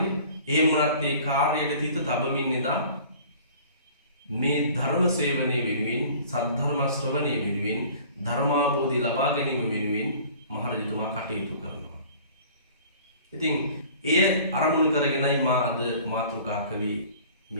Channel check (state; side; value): inverted; both; correlation -0.48